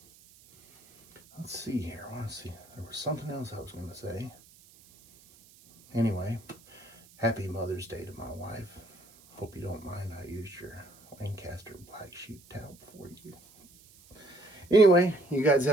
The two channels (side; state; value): right; noise; hiss, 25 dB below the sound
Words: let's see here. I want to see. There was something else I was going to say. Anyway, happy Mother's Day to my wife. Hope you don't mind I used your Lancaster black sheep towel for you. Anyway, you guys